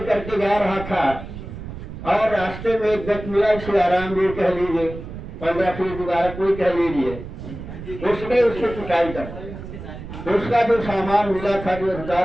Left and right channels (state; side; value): noise; right; rumble, 11 dB below the sound